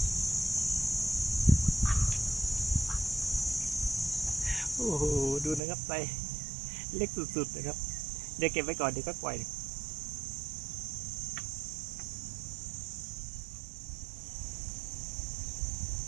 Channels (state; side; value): drops out; left; at 5.6 s